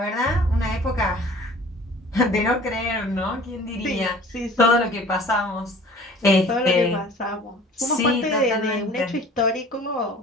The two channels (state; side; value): normal; both; correlation 0.47